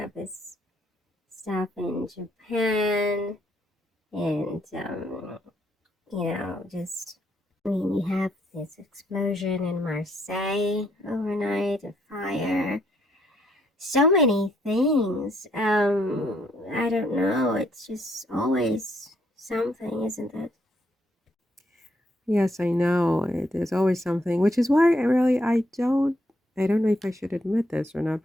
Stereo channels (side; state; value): both; normal; correlation 0.72